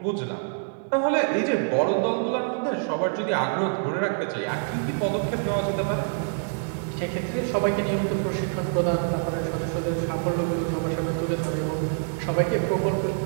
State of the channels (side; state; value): left; silent; 61 dB below the other